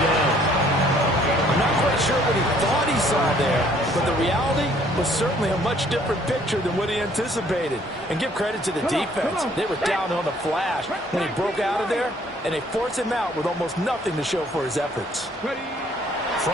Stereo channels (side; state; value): both; normal; correlation 0.61